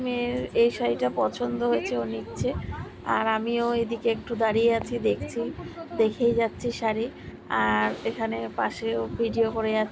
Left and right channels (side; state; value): both; identical; correlation 1.00